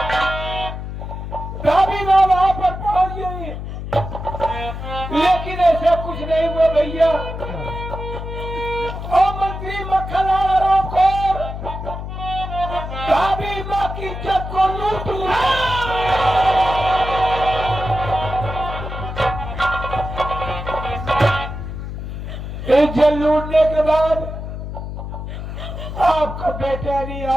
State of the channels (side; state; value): left; noise; hum, 7 dB below the sound